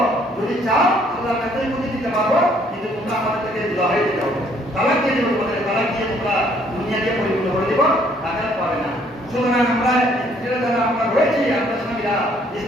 যদি চাও আল্লাহর কাছে যদি দিতে পারবো, কিন্তু তোমরা আমাদের থেকে লড়াই দিতে হবে, তালাক দিয়ে দেবো, তোমাদের তালাক দিয়ে তোমরা দুনিয়াকে পরিপূর্ণ করে দেবো, আখিরাত পাবে না। সুতরাং আমরা স্ত্রীরা যারা আমরা রয়েছি, আপনার স্বামীরা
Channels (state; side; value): normal; both; correlation 0.64